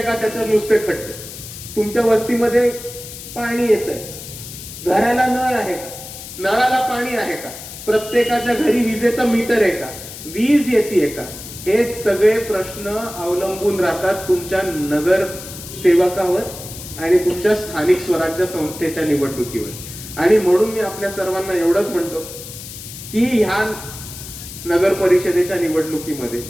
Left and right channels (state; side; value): noise; left; hiss, 12 dB below the sound